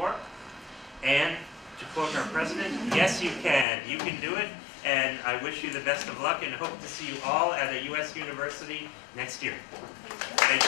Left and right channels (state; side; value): drops out; right; at 3.7 s